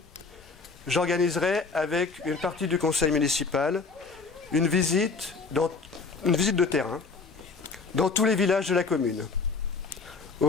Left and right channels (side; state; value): right; quieter; 4.4 dB